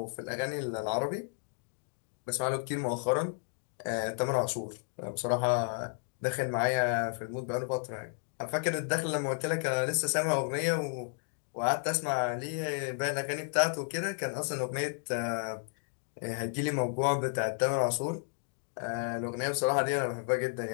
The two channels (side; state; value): right; silent; 56 dB below the other